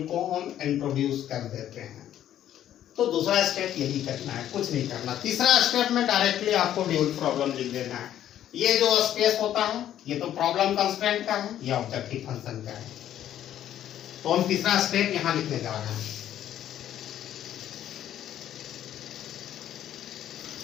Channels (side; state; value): right; quieter; 11.4 dB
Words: को हम इंट्रोड्यूस कर देते हैं। तो दूसरा स्टेप यही करना है, कुछ नहीं करना। तीसरा स्टेप में डायरेक्टली आपको ड्यूल प्रॉब्लम लिख देना है। ये जो स्पेस होता है ये तो प्रॉब्लम कंस्ट्रेंट का है, ये ऑब्जेक्टिव फंक्शन का है। तो हम तीसरा स्टेप यहाँ लिखने जा रहे हैं।